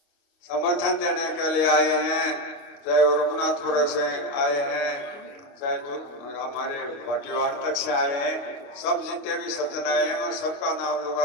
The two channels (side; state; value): right; late; 28 ms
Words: समर्थन देने के लिए आए हैं, चाहे वो रघुनाथपुर से आए हैं, चाहे हमारे भाटीवाड़ तक से आए हैं, सब जितने भी सज्जन आए हैं मैं सबका नाम लूंगा